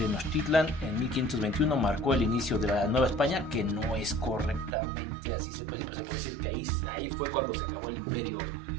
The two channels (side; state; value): left; drops out; at 4.8 s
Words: en 1521 marcó el inicio de la Nueva España, que no es correctamente así se puede decir, pero se puede decir que ahí fue cuando se acabó el imperio